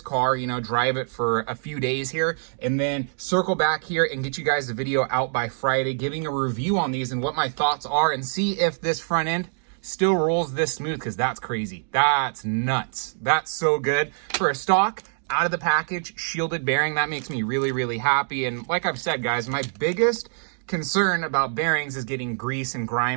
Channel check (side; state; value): left; silent; digital silence